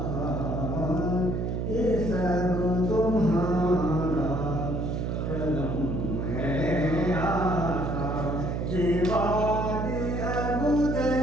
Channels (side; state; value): right; noise; hum, 1 dB below the sound